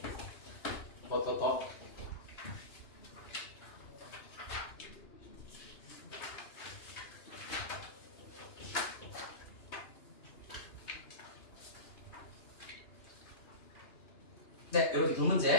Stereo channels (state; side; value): late; right; 2.9 ms